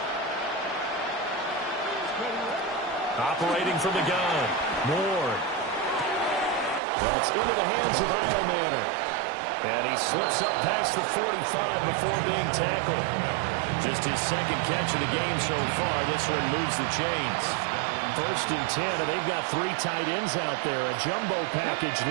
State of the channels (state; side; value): drops out; left; at 6.8 s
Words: Operating from the gun. Ward. That's into the hands of Manor. And he slips up past the 45 before being tackled. Just his second catch of the game so far. This one moves the chains. 1st and 10, and they've got 3 tight ends out there. A jumbo package